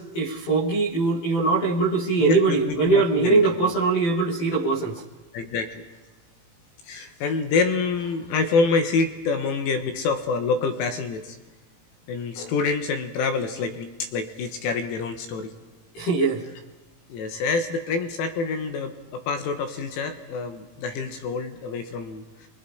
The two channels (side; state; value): right; late; 18 ms